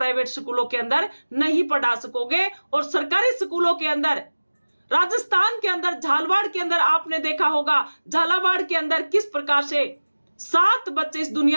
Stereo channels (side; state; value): both; inverted; correlation -1.00